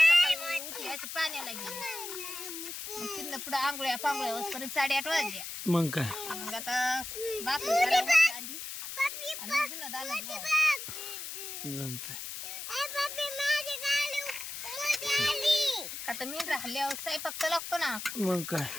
उठली असं पाण्याला गेली. मग तिथनं पुढे आंघोळ्या पांघोळ्या होईपर्यंत 8:30 वाजल्या. मग काय, मग आता भाकरी करायला आधी आणि मग धुणं दाणं धुवावं. जमतंय. आता मी राहिल्यावर स्वयंपाक तर लागतो ना, मग काय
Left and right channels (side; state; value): left; noise; hiss, 7 dB below the sound